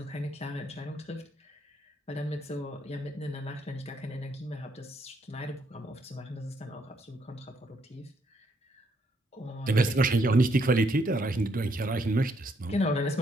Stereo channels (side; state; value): both; normal; correlation 0.73